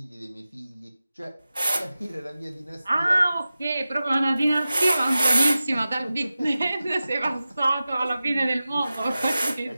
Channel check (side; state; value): both; inverted; correlation -0.95